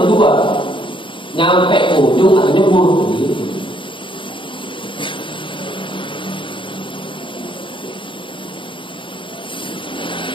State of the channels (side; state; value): right; late; 0.24 ms